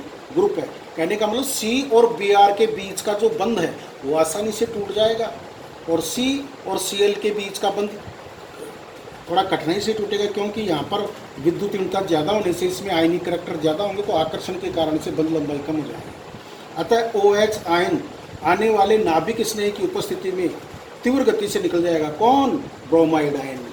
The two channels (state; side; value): identical; both; correlation 1.00